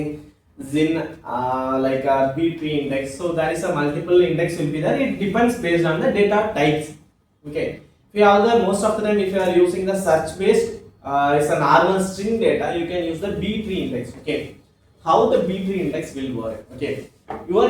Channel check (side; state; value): both; identical; correlation 1.00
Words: Zin like a B tree index. So there is a multiple index will be there. It depends based on the data types. Okay, if you have the most of the time if you are using the search based it's a normal string data, you can use the B tree index. Okay, how the B tree index will work? Okay,